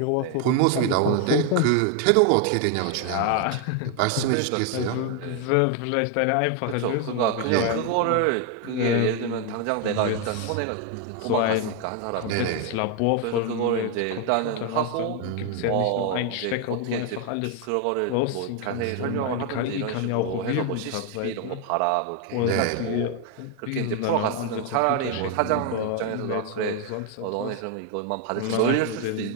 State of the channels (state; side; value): different; both; correlation 0.01